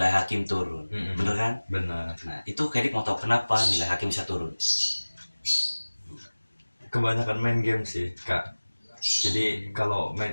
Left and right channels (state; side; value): inverted; both; correlation -1.00